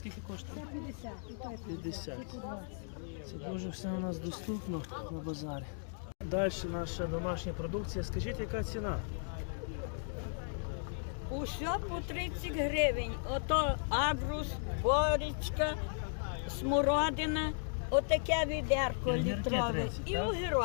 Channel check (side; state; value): right; silent; digital silence